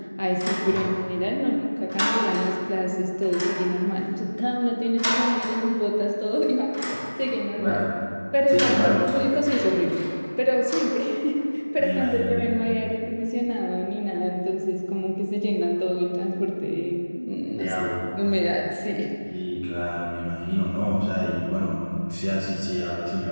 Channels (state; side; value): inverted; both; correlation -1.00